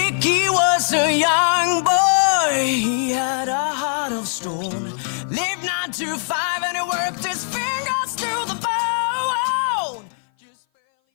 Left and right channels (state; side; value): silent; right; 58 dB below the other